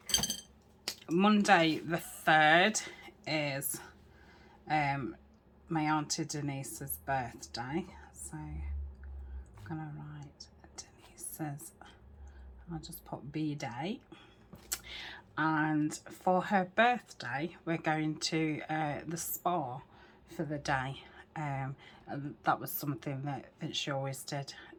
Monday the 3rd is my Auntie Denise's birthday. So, I'm going to write Denise's, I'll just put B-Day. And for her birthday, we're going to the spa for the day. That was something that she always did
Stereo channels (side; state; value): both; identical; correlation 1.00